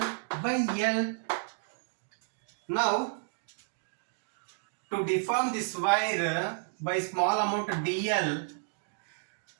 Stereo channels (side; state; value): left; silent; 56 dB below the other